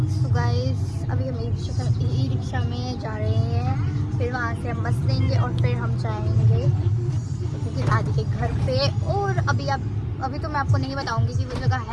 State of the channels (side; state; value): both; identical; correlation 1.00